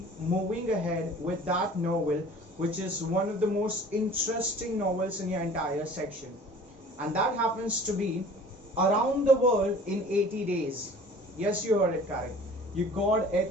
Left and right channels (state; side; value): normal; both; correlation 0.46